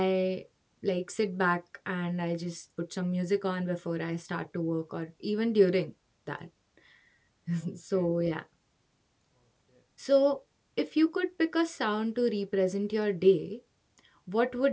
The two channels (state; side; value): identical; both; correlation 1.00